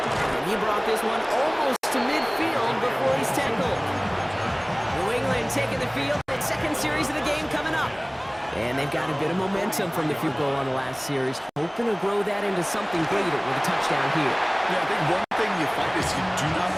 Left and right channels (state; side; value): identical; both; correlation 1.00